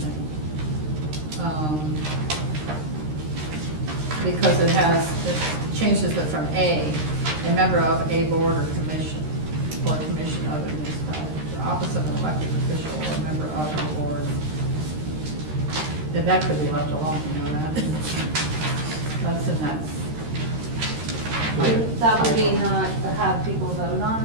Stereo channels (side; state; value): left; late; 13 ms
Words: Because it changes it from a member of a board or commission of a municipality, the office of an elected official or a member of a board. That could be left alone, you know that? That's in that. That would be not have people vote